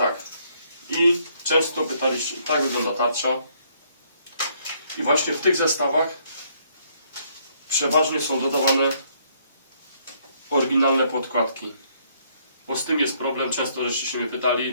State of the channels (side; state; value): both; inverted; correlation -0.68